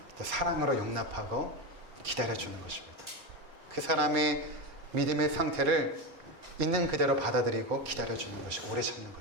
사랑으로 용납하고 기다려주는 것입니다. 그 사람의 믿음의 상태를 있는 그대로 받아들이고 기다려주는 것이 오래 참는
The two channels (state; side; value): late; left; 4.3 ms